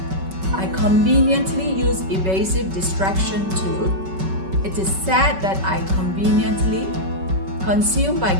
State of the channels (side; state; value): left; late; 5.3 ms